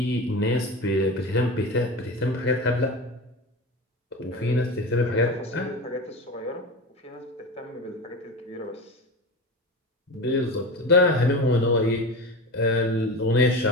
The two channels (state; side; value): normal; both; correlation 0.27